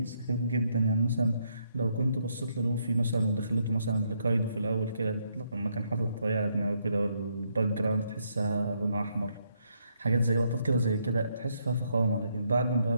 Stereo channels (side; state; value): both; inverted; correlation -0.75